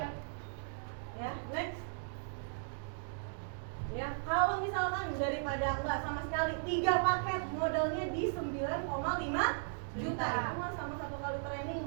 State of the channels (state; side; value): silent; left; digital silence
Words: Ya, next. Ya, kalau misalkan daripada enggak sama sekali 3 paket modalnya di 9,5 juta. Itu mah sama 1 kali training